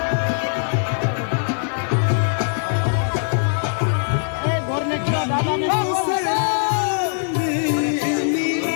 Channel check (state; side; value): silent; right; digital silence